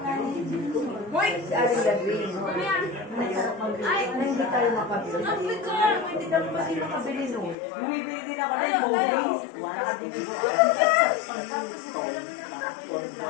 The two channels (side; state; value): right; drops out; at 7.6 s